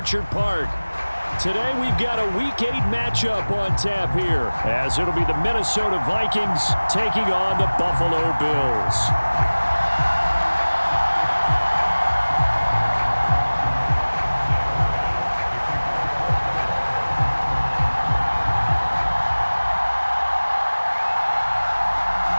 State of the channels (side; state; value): both; inverted; correlation -1.00